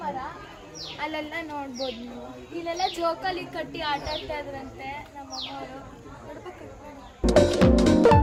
ಮರ, ಅಲ್ಲೆಲ್ಲ ನೋಡ್ಬೋದು ನೀವು. ಇಲ್ಲೆಲ್ಲ ಜೋಕಾಲಿ ಕಟ್ಟಿ ಆಟ ಆಡ್ತಾ ಇದ್ರಂತೆ ನಮ್ಮಮ್ಮವರು.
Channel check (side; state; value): both; identical; correlation 1.00